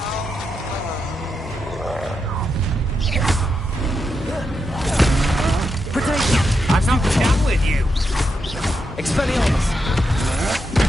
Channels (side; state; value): both; normal; correlation 0.84